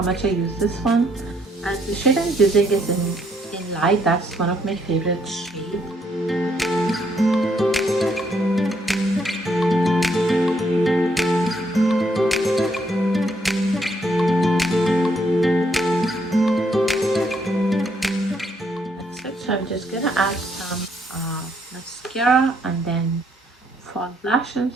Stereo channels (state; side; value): normal; both; correlation 0.71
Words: much I use this one. And the shade I'm using is in light. That's one of my favorite shades. That's it. So I'm just gonna add some mascara and then fall